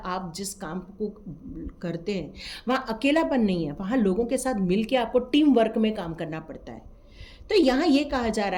जिस काम को करते हैं वहाँ अकेलापन नहीं है, वहाँ लोगों के साथ मिल के आपको टीम वर्क में काम करना पड़ता है। तो यहाँ ये कहा जा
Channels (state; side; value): identical; both; correlation 1.00